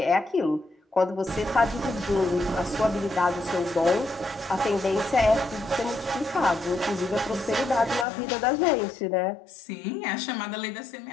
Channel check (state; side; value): drops out; right; at 8.1 s